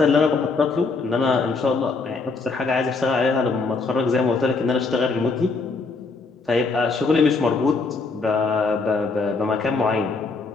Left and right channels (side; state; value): right; quieter; 4.0 dB